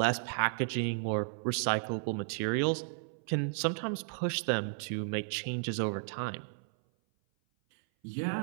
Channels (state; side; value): silent; left; 55 dB below the other